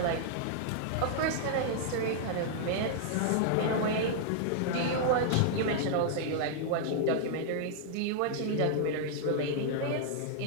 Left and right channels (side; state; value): both; different; correlation -0.01